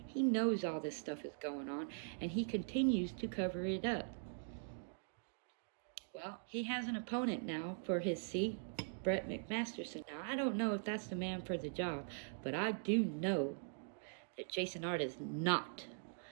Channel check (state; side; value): silent; left; digital silence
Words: He knows all this stuff is going on, and he continues to cover it up. Well, he has an opponent now for his seat, Brett McMasterson. Now, I don't know if that's the man for the job, but I do know that Jason Ard is not